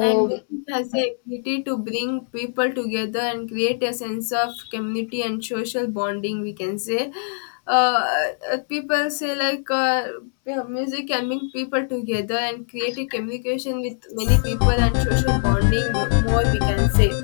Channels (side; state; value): right; silent; digital silence